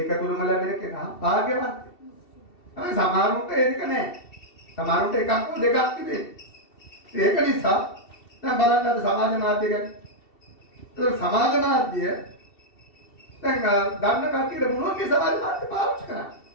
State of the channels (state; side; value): late; right; 2.7 ms